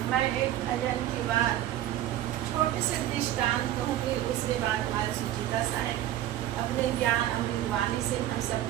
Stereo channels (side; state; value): left; quieter; 13.0 dB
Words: मैं एक भजन की बात छोटे से दृष्टांत कहूँगी, उसके बाद हमारे सुचिता साहब अपने ज्ञान अमृतवाणी से हम